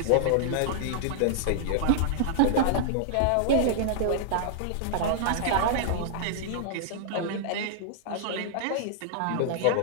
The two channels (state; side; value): different; both; correlation -0.01